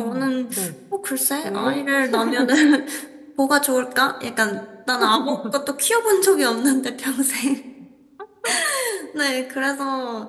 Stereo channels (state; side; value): identical; both; correlation 1.00